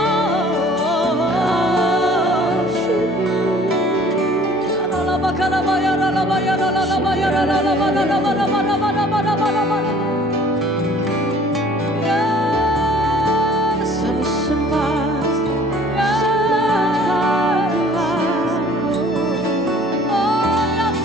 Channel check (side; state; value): both; normal; correlation 0.52